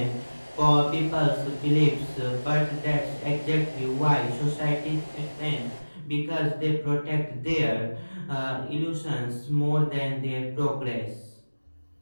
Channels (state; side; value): inverted; both; correlation -1.00